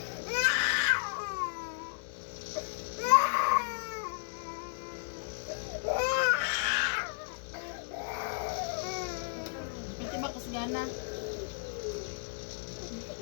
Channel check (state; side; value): silent; right; digital silence